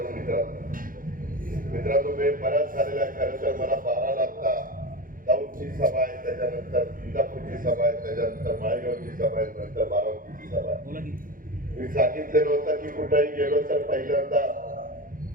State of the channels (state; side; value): late; left; 0.40 ms